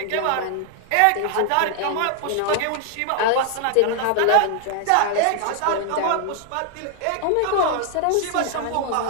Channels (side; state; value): both; different; correlation 0.00